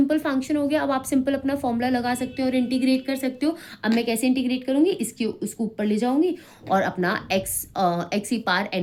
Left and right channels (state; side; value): identical; both; correlation 1.00